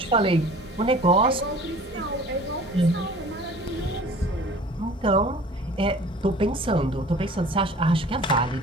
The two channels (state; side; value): normal; both; correlation 0.46